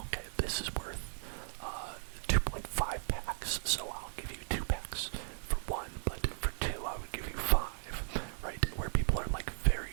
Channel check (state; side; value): silent; left; 54 dB below the other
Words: this is worth 2.5 packs, so I'll give you 2 packs for 1, but for 2 I would give you 5, right? Where people are like very,